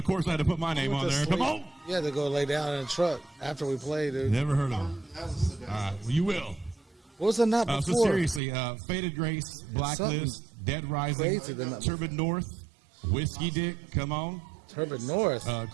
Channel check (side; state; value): left; drops out; at 8.4 s